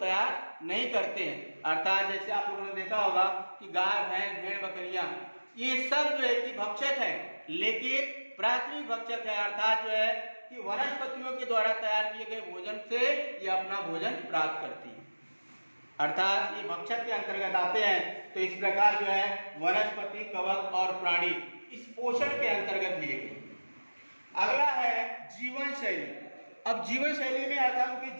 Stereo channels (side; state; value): both; inverted; correlation -1.00